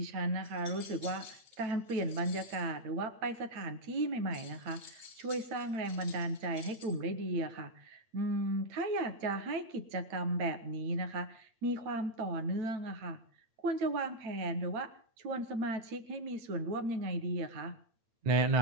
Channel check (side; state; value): left; late; 9.1 ms